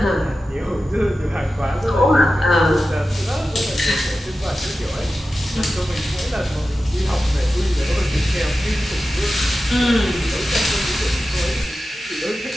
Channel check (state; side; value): normal; both; correlation 0.93